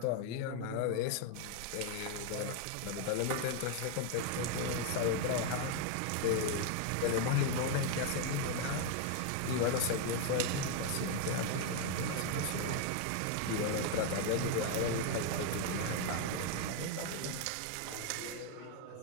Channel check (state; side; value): different; both; correlation 0.01